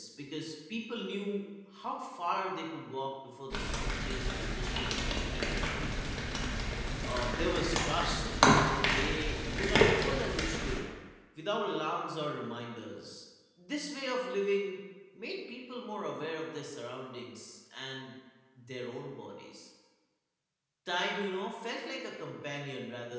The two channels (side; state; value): both; identical; correlation 1.00